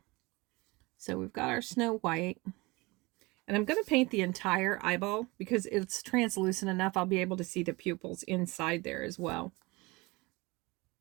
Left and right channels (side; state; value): left; quieter; 23.8 dB